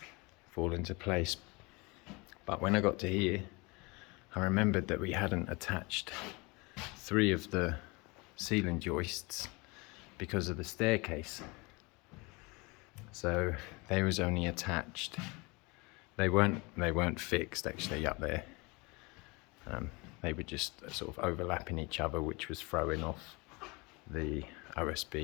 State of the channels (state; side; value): quieter; right; 26.7 dB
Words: fall into place. But when I got to here, I remembered that we hadn't attached 3 of the ceiling joists because of the staircase. So they was only attached, they weren't fixed actually up there. They were just sort of overlapping each other, which was throwing off the